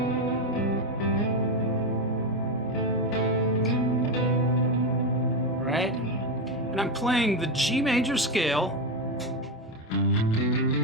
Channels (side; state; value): both; normal; correlation 0.11